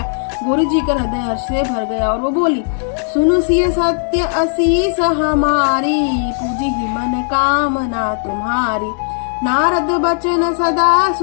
गौरी जी का हृदय हर्ष से भर गया और वो बोली, सुनु सिय सत्य असीस हमारी, पूजी ही मन कामना तुम्हारी। नारद बचन सदा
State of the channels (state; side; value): silent; right; 69 dB below the other